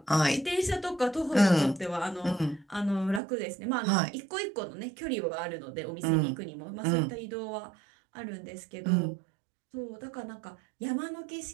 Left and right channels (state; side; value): drops out; left; at 3.2 s